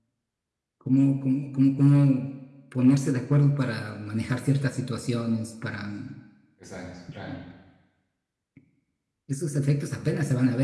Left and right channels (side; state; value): both; identical; correlation 1.00